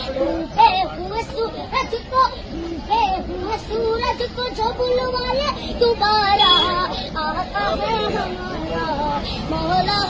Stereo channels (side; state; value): both; identical; correlation 1.00